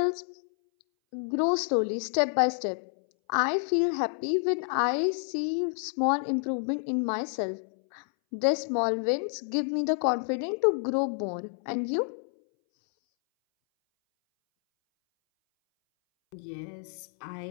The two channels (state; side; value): silent; right; 59 dB below the other